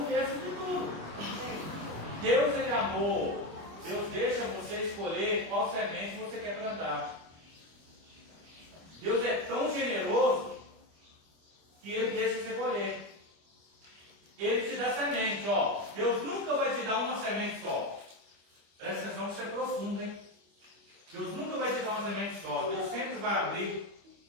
de tudo. Deus, Ele é amor. Deus deixa você escolher qual semente você quer plantar. Deus é tão generoso que Ele deixa você colher. Ele te dá semente, Deus nunca vai te dar uma semente só. Presta atenção que isso é profundo, hein? Deus nunca vai te dar uma semente só. Deus sempre vai abrir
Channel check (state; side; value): late; left; 25 ms